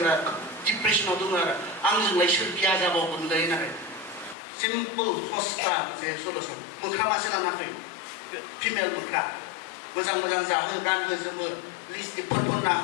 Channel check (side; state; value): right; drops out; at 4.4 s